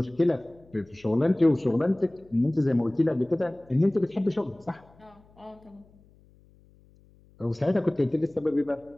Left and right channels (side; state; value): left; noise; hum, 29 dB below the sound